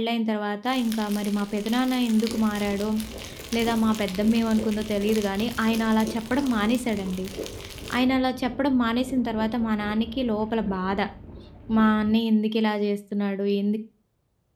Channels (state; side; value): identical; both; correlation 1.00